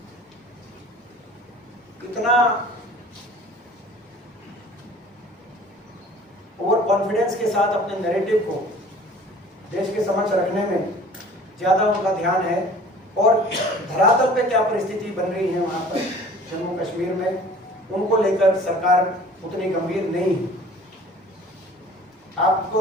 इतना ओवर कॉन्फिडेंस के साथ अपने नैरेटिव को देश के समक्ष रखने में ज्यादा उनका ध्यान है, और धरातल पे क्या परिस्थिति बन रही है वहां पर जम्मू कश्मीर में, उनको लेकर सरकार उतनी गंभीर नहीं है।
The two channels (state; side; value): normal; both; correlation 0.47